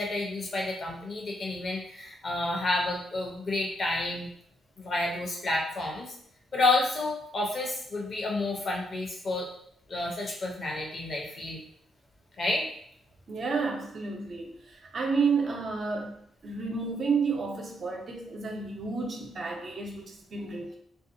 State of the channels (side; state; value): both; normal; correlation 0.74